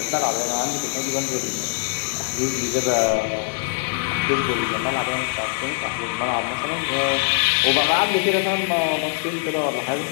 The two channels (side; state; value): right; silent; digital silence